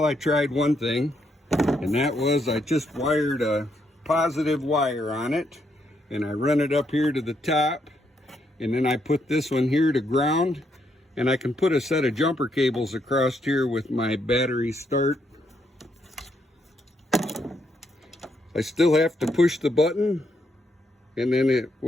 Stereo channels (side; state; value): both; normal; correlation 0.76